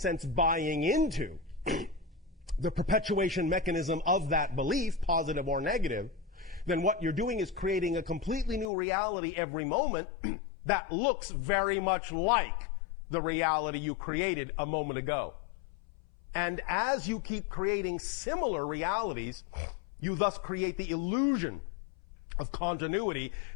buying into the perpetuation mechanism of that belief, positive or negative, then what you're doing is creating a completely new reality every moment that looks very much like the reality you created a moment ago. And as you keep creating similar realities, you thus create the illusion of continuity,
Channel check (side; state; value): right; drops out; at 8.7 s